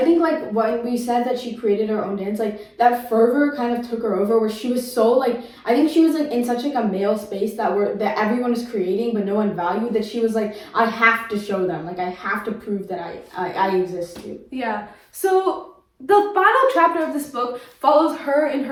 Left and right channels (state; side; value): identical; both; correlation 1.00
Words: think, like, when we said that she created her own dance, like, that fervor kind of took her over, where she was so, like, I think she was, like, in such, like, a male space that everyone is creating, but no one valued, that she was like, I have to show them, like, I have to prove that I exist too. Yeah. So the final chapter of this book follows her in